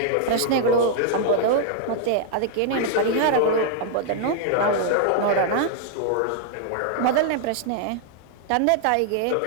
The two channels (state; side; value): different; both; correlation 0.00